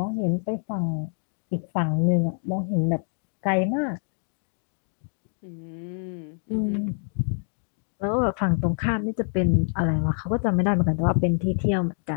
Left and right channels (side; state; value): right; silent; digital silence